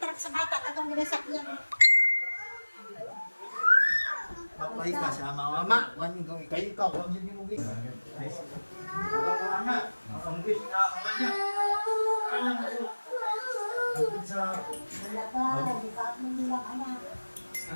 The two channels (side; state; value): both; inverted; correlation -1.00